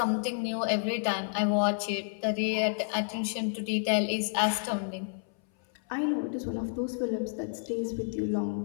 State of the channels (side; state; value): right; silent; 57 dB below the other